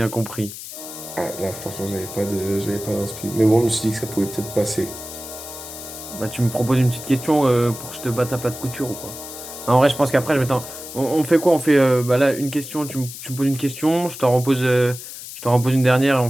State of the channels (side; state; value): left; noise; hiss, 12 dB below the sound